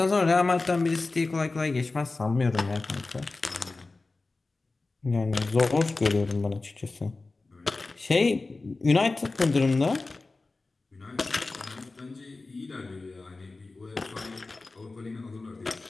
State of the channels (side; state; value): right; quieter; 3.5 dB